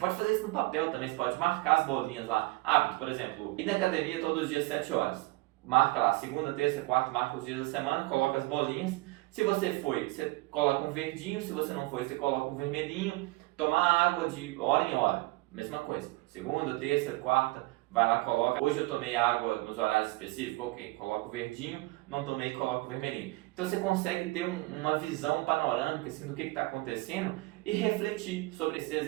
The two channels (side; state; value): left; quieter; 21.8 dB